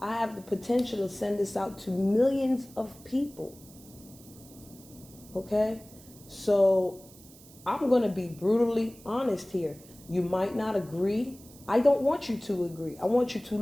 I have the potential to send this out to millions of people. Okay? So I'm going to be brutally honest here. You might not agree. I don't want you to agree. I want you to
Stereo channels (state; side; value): noise; right; hiss, 22 dB below the sound